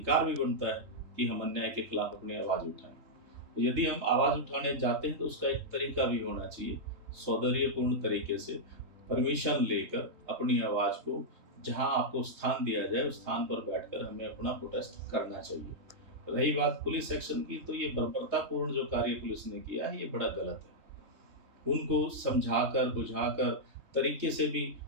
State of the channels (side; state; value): left; late; 3.6 ms